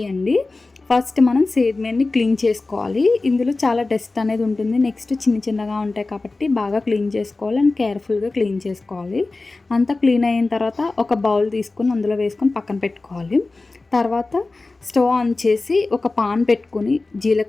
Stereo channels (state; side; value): quieter; right; 3.4 dB